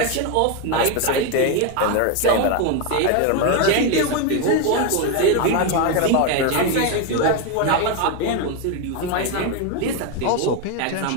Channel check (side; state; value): both; different; correlation 0.02